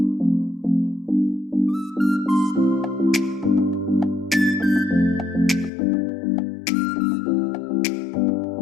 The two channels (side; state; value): right; drops out; at 5.7 s